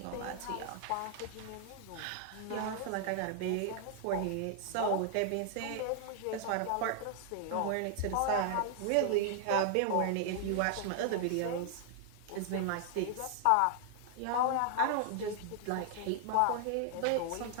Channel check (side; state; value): both; different; correlation 0.00